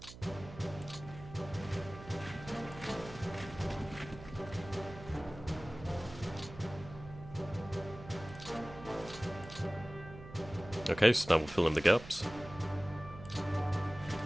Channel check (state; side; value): noise; right; hum, 15 dB below the sound